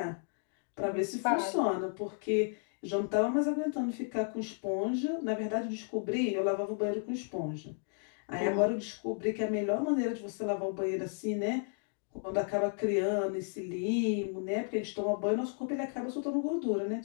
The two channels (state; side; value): silent; right; 55 dB below the other